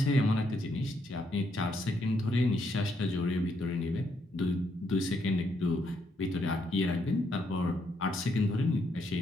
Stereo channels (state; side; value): normal; both; correlation 0.75